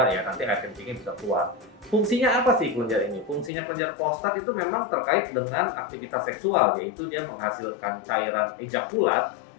ya nanti air kencingnya bisa keluar. Fungsinya apa sih kelenjar ini? Fungsinya kelenjar prostat itu memang terkait dengan aktivitas seksual, yaitu dia menghasilkan cairan ejakulat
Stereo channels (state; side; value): drops out; right; at 3.5 s